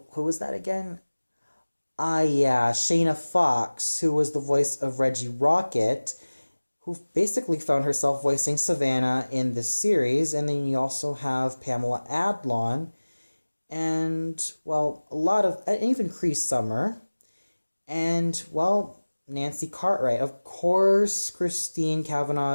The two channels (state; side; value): inverted; both; correlation -1.00